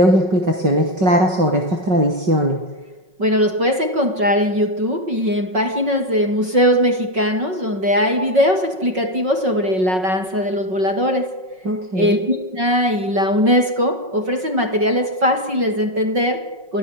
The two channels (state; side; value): late; left; 5.4 ms